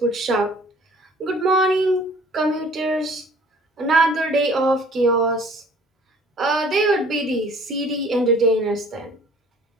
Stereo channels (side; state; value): both; normal; correlation 0.53